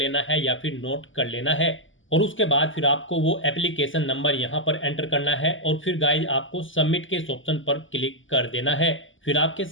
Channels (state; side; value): late; right; 0.57 ms